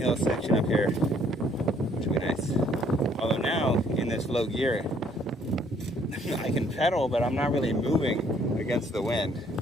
section up here, which will be nice. Although now, in this low gear, I can pedal, but I'm not really moving against the wind.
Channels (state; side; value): normal; both; correlation 0.63